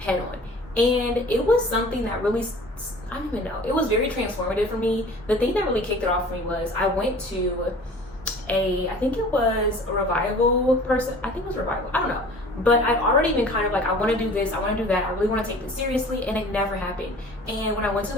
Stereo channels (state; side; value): normal; both; correlation 0.45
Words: head on. And it was something that really, I don't even know, it was very transformative for me. The thing that really kicked it off for me was I went to I think it was a revival person. I think it was revival. I don't know. But I've already been kind of like, I want to do this, I want to do that, I really want to take this seriously, and it never happened. And when I went to